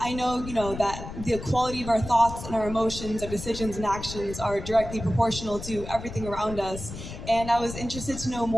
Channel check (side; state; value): left; noise; rumble, 10 dB below the sound